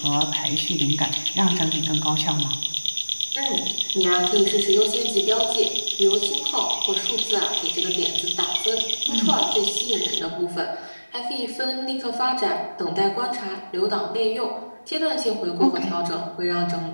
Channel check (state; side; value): inverted; both; correlation -1.00